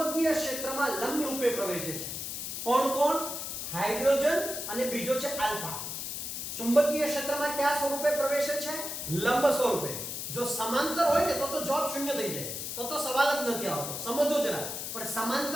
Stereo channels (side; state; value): left; noise; hiss, 5 dB below the sound